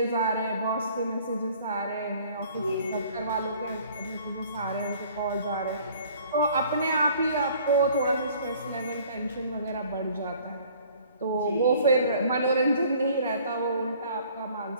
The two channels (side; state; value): both; inverted; correlation -0.54